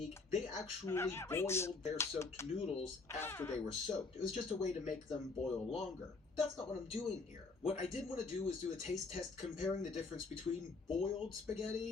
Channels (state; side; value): quieter; right; 4.0 dB